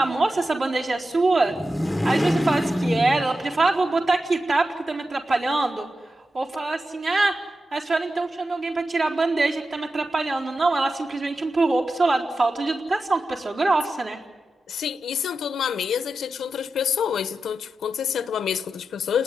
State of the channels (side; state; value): both; normal; correlation 0.90